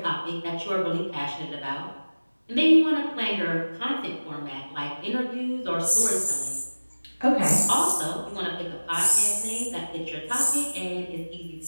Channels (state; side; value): inverted; both; correlation -1.00